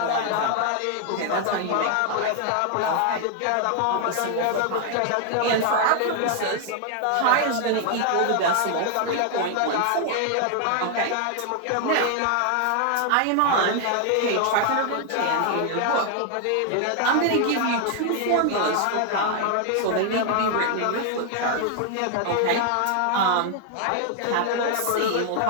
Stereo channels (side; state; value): both; different; correlation 0.00